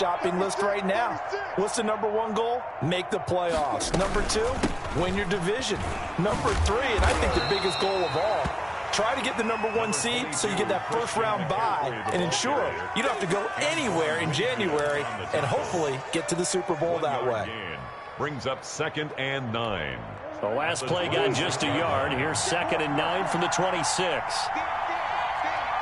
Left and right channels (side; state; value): both; identical; correlation 1.00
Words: list right now. What's the #1 goal? Make the playoffs. #2, win your division. #3, and I think the biggest goal of all, try to get the #1 seed so you get that 1st round bye and ensure you don't have to go anywhere in January and hopefully get to the Super Bowl that way. Brings up 2nd and 9. The last play got just a yard. Here's 2nd and 9 from the 26.